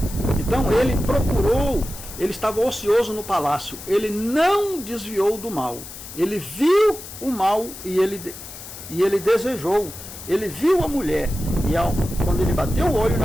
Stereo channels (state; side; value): noise; left; hiss, 13 dB below the sound